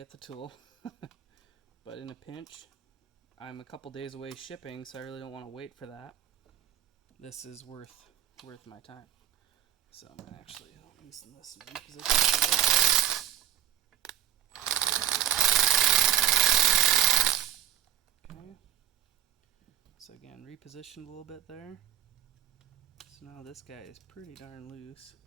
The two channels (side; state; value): left; quieter; 10.9 dB